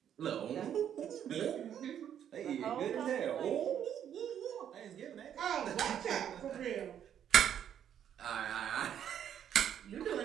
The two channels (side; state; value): left; quieter; 9.5 dB